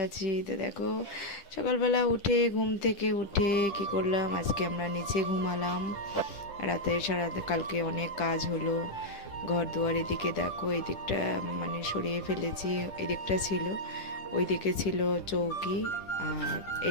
আছি। তো দেখো, সকালবেলা উঠে ঘুম থেকে উঠে কি করলাম, আজকে আমরা নিচে ঘুমালাম। রাতে সারা কালকে অনেক কাজ হলো, ঘর দুয়ার। এদিকে দেখো, এই দিকটা মানে সরিয়ে ফেলেছি। এই দিকটা ছিল, ওই দিকে ছিল চৌকি, আর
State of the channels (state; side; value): late; right; 10 ms